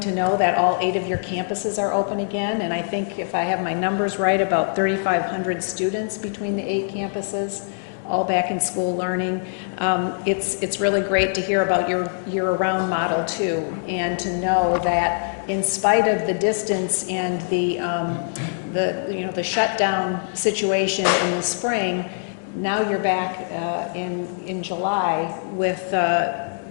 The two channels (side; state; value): right; silent; digital silence